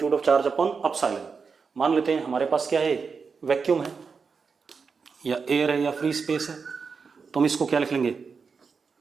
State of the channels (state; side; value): quieter; left; 5.3 dB